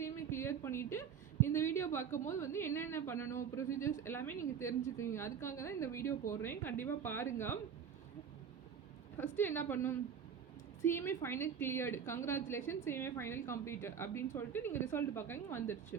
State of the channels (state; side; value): quieter; left; 7.6 dB